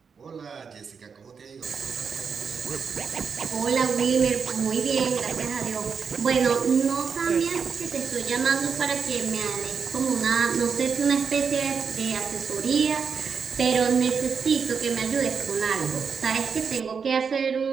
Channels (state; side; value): quieter; left; 6.0 dB